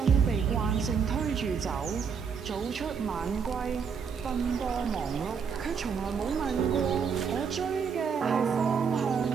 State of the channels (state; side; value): quieter; left; 6.3 dB